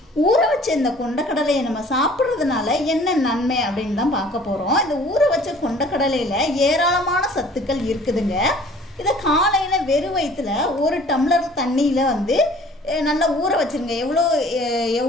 ஊற வச்ச இந்த கொண்டக்கடலையை நம்ம சாப்பிட்றதுனால என்ன நன்மை அப்படின்னு தான் பார்க்க போகிறோம். இந்த ஊற வச்ச கொண்டக்கடலையில் ஏராளமான சத்துக்கள் இருக்குதுங்க. இதை காலையில் வெறும் வயிற்றுல ஒரு டம்ளர் தண்ணியில் நல்லா ஊற வச்சுருங்க.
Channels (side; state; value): both; normal; correlation 0.51